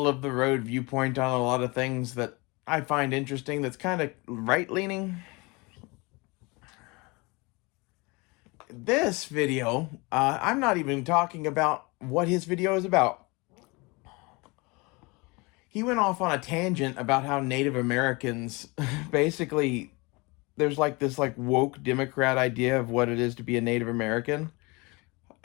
of the road viewpoint on a lot of things that I find interesting that's kind of right leaning. This video, I'm not even talking about what his video is about. He went off on a tangent about how Native Americans basically there's like this like woke Democrat idea of what it is to be a Native American.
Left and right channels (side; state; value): right; quieter; 26.4 dB